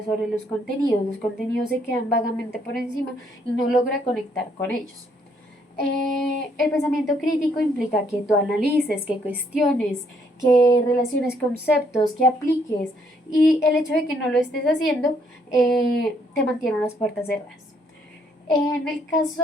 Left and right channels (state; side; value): normal; both; correlation 0.69